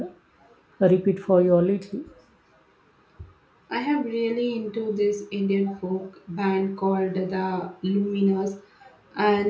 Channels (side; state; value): both; identical; correlation 1.00